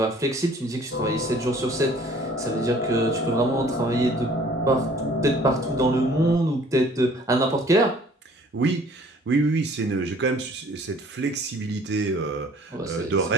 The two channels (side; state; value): both; normal; correlation 0.54